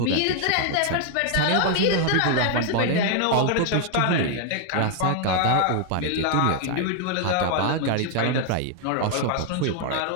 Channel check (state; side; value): different; both; correlation 0.00